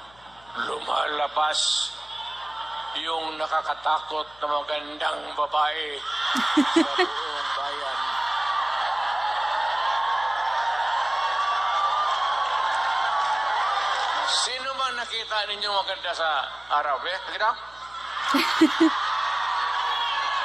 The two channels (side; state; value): left; noise; hum, 28 dB below the sound